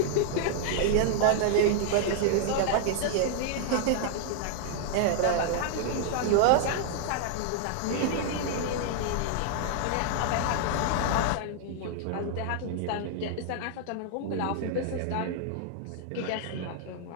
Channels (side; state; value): both; different; correlation -0.01